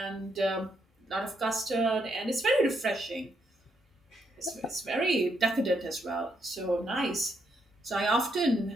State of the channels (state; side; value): normal; both; correlation 0.77